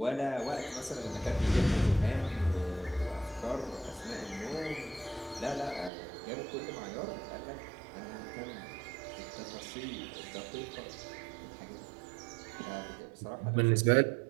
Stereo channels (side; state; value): left; drops out; at 5.9 s